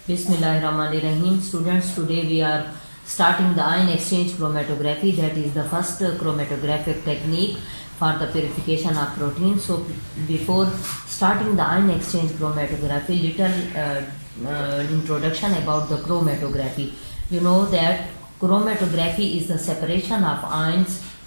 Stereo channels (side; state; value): both; inverted; correlation -1.00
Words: Bismillahirrahmanirrahim. Students, today we are starting the ion exchange chromatography. That is the first chromatographic technique for the purification of protein. So before starting the ion exchange chromatography, little introduction about the chromatography. You know that chromatography is the separation of ions,